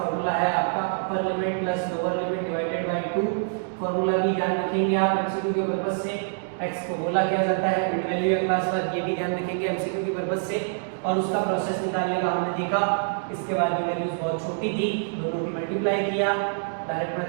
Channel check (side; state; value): left; silent; digital silence